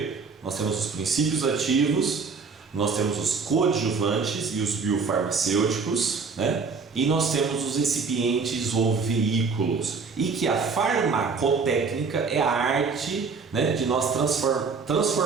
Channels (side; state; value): left; quieter; 4.9 dB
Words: nós temos os princípios ativos, nós temos os coadjuvantes e os biofarmacêuticos, e nós temos os recipientes ou veículos. E que a farmacotécnica é a arte, de nós